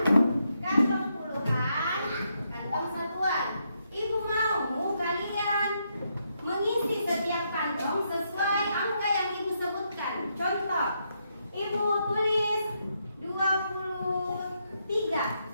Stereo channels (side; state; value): both; inverted; correlation -0.79